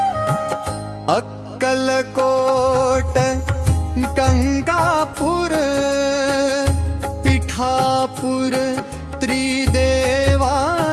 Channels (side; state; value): both; identical; correlation 1.00